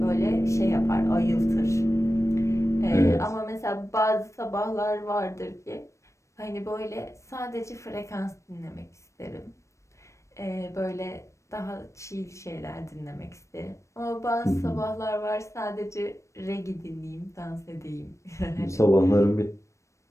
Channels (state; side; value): late; right; 0.15 ms